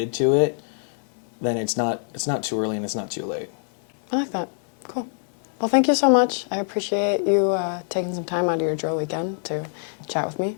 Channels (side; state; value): right; silent; 62 dB below the other